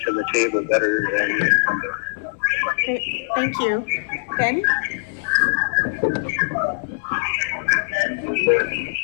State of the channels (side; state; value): right; silent; digital silence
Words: to the table better than the incumbent. Great, thank you. Ben?